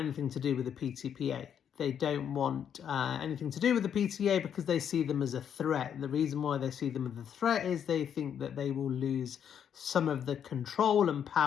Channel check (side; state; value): right; quieter; 8.6 dB